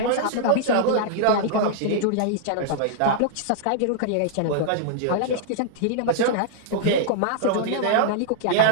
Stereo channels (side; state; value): both; different; correlation -0.01